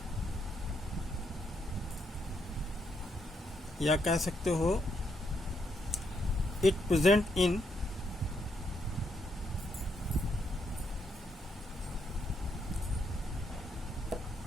या कह सकते हो it present in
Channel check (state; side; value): normal; both; correlation 0.77